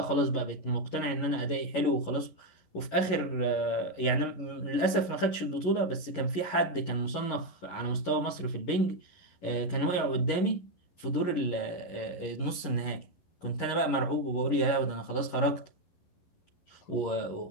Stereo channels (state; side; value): late; right; 11 ms